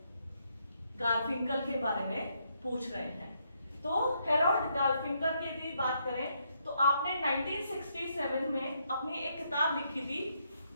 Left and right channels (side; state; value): both; inverted; correlation -0.75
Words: गारफिंकल के बारे में पूछ रहे हैं। तो हेरोल्ड गारफिंकल की यदि बात करें तो आपने 1967 में अपनी एक किताब लिखी थी,